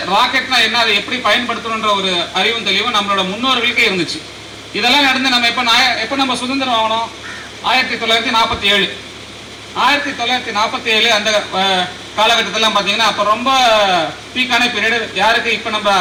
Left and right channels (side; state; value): both; identical; correlation 1.00